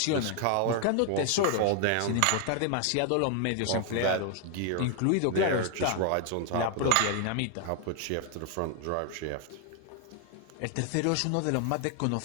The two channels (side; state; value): both; different; correlation 0.00